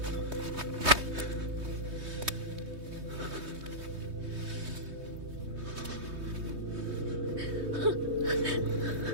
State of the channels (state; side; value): late; left; 3.2 ms